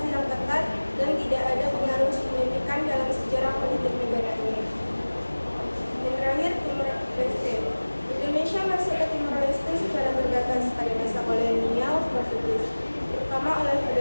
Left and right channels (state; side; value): inverted; both; correlation -1.00